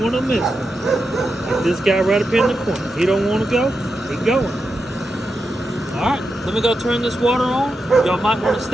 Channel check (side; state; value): both; normal; correlation 0.88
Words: want to miss one. Like this guy right up in the corner. He don't want to go. He going. Alright, let me go turn this water on. Y'all might want to